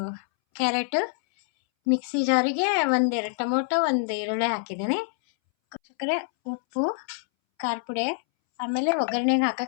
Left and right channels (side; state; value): right; silent; 61 dB below the other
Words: ಕ್ಯಾರೆಟ್, ಮಿಕ್ಸಿ ಜಾರಿಗೆ 1-2 ಟೊಮೊಟೊ, 1 ಈರುಳ್ಳಿ ಹಾಕಿದ್ದೀನಿ. ವೀಕ್ಷಕರೇ, ಉಪ್ಪು, ಖಾರ ಪುಡಿ, ಆಮೇಲೆ ಒಗ್ಗರಣೆಗೆ